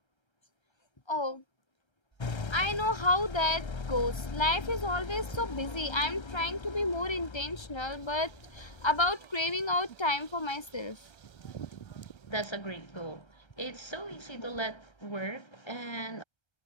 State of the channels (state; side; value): late; right; 1.3 ms